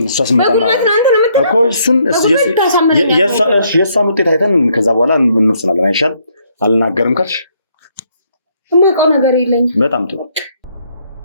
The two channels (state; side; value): inverted; both; correlation -0.69